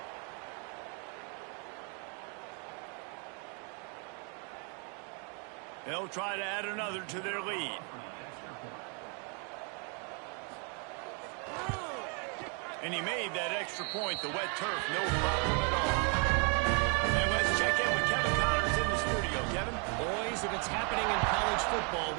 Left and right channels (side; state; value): left; quieter; 37.4 dB